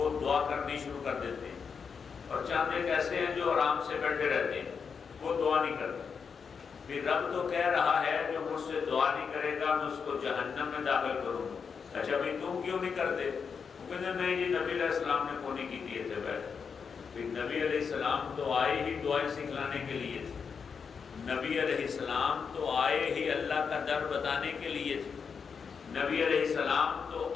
دعا کرنی شروع کر دیتے ہیں. اور چاند ایک ایسے ہیں جو آرام سے بیٹھے رہتے ہیں، وہ دعا نہیں کرتے. پھر رب تو کہہ رہا ہے جو مجھ سے دعا نہیں کرے گا میں اس کو جہنم میں داخل کروں گا. اچھا بھائی تم کیوں نہیں کرتے؟ وہ کہتے ہیں نہیں جی نبی علیہ السلام نے کو نہیں کی دیے تھے بیٹھ. پھر نبی علیہ السلام تو آئے ہی دعائیں سکھلانے کے لیے تھے. نبی علیہ السلام تو آئے ہی اللہ کا در بتانے کے لیے تھے. نبی علیہ السلام تو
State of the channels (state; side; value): quieter; right; 6.0 dB